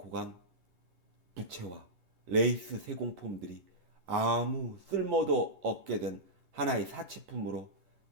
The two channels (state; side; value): late; left; 11 ms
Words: 간 부채와 레이스 세공품들이 아무 쓸모도 없게 된 하나의 사치품으로